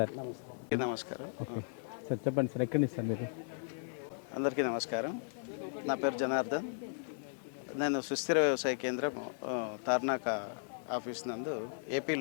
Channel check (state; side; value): silent; right; 54 dB below the other